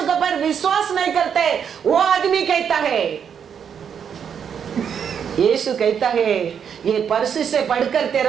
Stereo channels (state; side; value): quieter; left; 7.7 dB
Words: के ऊपर विश्वास नहीं करते वो आदमी कहता है। यीशु कहता है ये परसी से पढ़कर